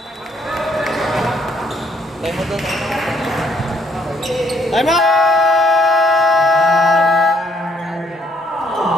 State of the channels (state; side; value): normal; both; correlation 0.67